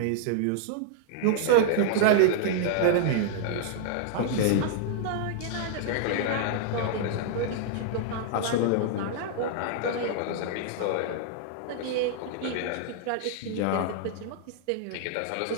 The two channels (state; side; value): different; both; correlation -0.01